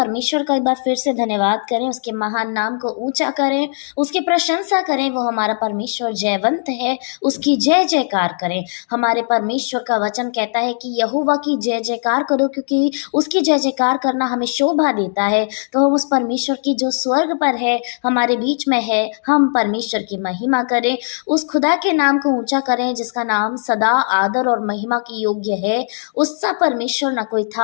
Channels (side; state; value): right; silent; digital silence